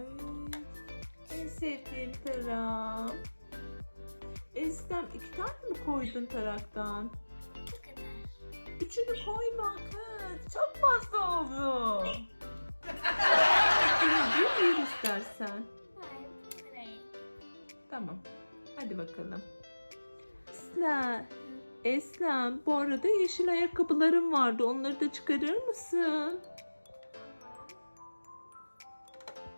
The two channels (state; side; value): inverted; both; correlation -1.00